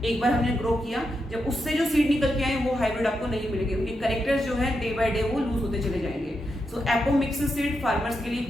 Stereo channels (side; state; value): both; normal; correlation 0.85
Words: एक बार हमने ग्रो किया, जब उससे जो सीड निकल के आए वो हाइब्रिड आपको नहीं मिलेंगे, उनके कैरेक्टर्स जो है डे बाय डे वो लूज होते चले जाएंगे। सो एपोमिक्सिस सीड फार्मर्स के लिए